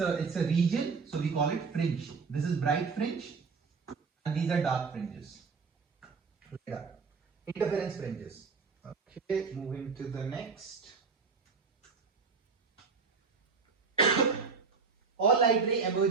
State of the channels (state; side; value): quieter; left; 5.0 dB